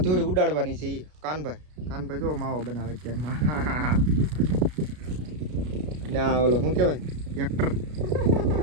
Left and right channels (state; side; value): late; left; 33 ms